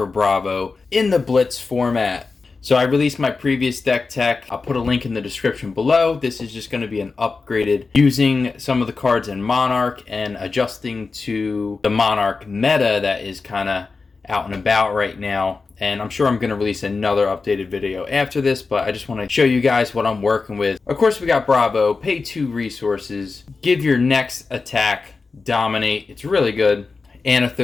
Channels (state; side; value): quieter; right; 4.3 dB